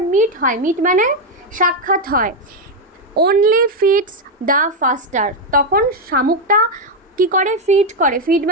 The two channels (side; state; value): both; normal; correlation 0.04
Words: মিট হয়, মিট মানে সাক্ষাৎ হয়, অনলি ফিডস দ্য ফাস্টার, তখন শামুকটা কি করে? ফিড